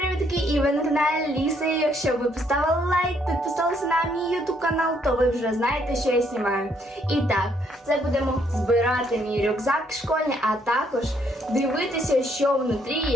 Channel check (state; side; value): normal; both; correlation 0.70